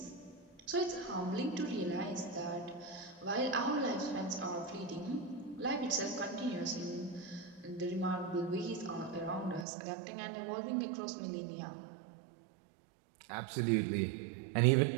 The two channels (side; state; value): left; drops out; at 9.7 s